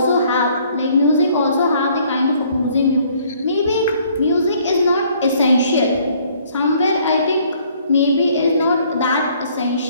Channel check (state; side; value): inverted; both; correlation -0.62